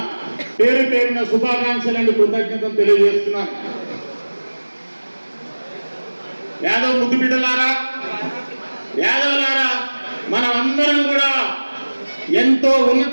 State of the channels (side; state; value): both; inverted; correlation -1.00